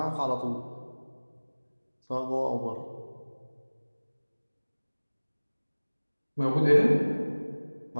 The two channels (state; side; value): inverted; both; correlation -1.00